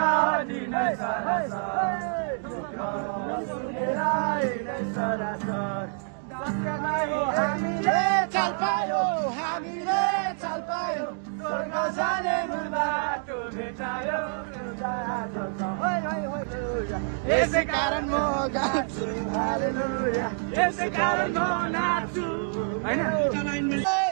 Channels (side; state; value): left; silent; 60 dB below the other